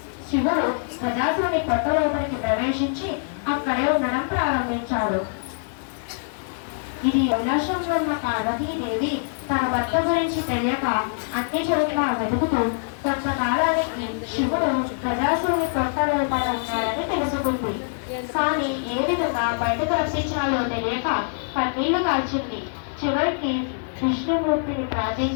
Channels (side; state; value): right; silent; 62 dB below the other